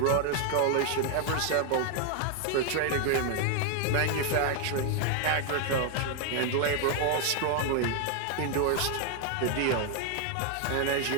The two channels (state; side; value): different; both; correlation 0.01